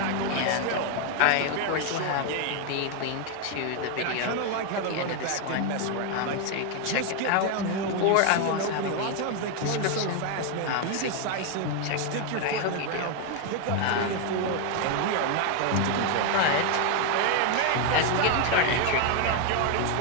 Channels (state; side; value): different; both; correlation 0.01